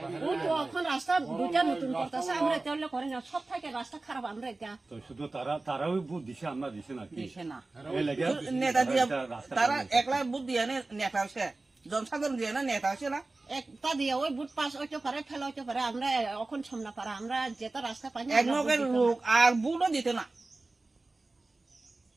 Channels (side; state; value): left; quieter; 3.2 dB